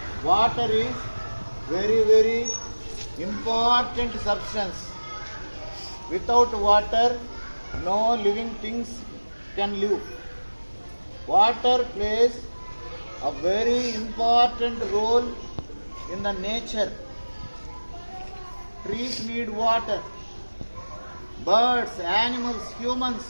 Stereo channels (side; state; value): both; inverted; correlation -1.00